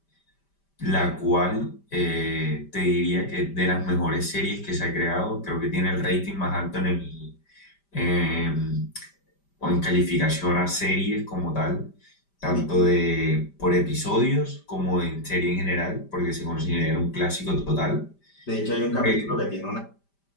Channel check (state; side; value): late; right; 5.1 ms